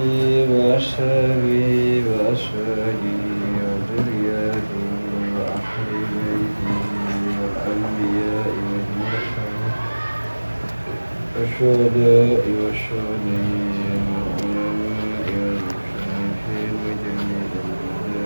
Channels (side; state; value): both; inverted; correlation -1.00